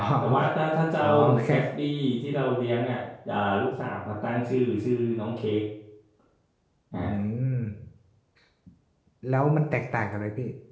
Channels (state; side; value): identical; both; correlation 1.00